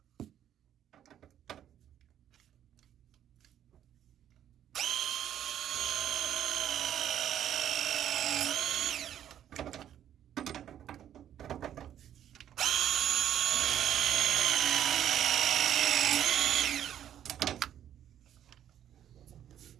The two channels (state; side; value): quieter; left; 10.5 dB